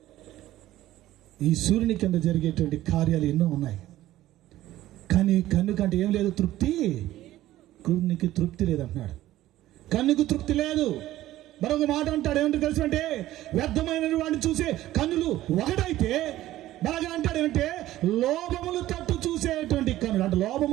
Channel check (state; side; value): quieter; left; 14.8 dB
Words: ఈ సూర్యుని కింద జరిగేటువంటి కార్యాలు ఎన్నో ఉన్నాయి, కానీ కన్ను కంటే ఏం లేదు? తృప్తి. కన్నుకి తృప్తి లేదంటున్నాడు. కన్నుకు తృప్తి లేదు. మరొక మాట అంటాడు, ఏమంటే తెలుసు అంటే, వ్యర్థమైన వాడిని చూసే కన్నులు ఒకటైతే బాగా అంటాడు ఏమంటే, లోభములు తట్టు చూసేటువంటి కన్నులు అంటే,